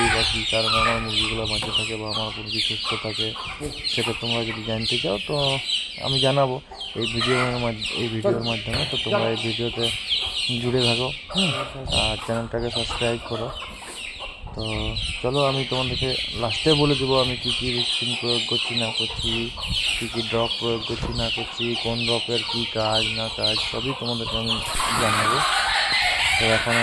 বা কী কারণে আমার মুরগিগুলো বাঁচে থাকে বা আমার মুরগি সুস্থ থাকে, সেটা তোমরা যদি জানতে চাও তো আমি জানাবো এই ভিডিওর মাধ্যমে। তো তোমরা এই ভিডিওতে জুড়ে থাকো, আর চ্যানেলটাকে সাবস্ক্রাইব করো। তো চলো আমি তোমাদেরকে লাস্টে বলে দেবো আমি কী কী ভ্যাকসিন প্রয়োগ করছি না করছি, কী কী ড্রপ প্রয়োগ করছি না করছি, কোন ড্রপের কী কাজ না কাজ সবই তোমাদেরকে আমি জানাবো। তো এখন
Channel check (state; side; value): identical; both; correlation 1.00